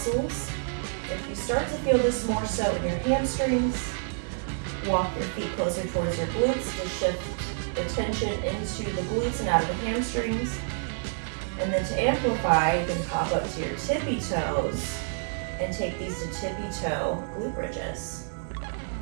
If you start to feel this more so in your hamstrings, walk your feet closer towards your glutes to shift the tension into the glutes and out of the hamstrings. And then to amplify, you can pop up to your tippy toes and take these to tippy toe glute bridges.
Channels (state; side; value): silent; left; digital silence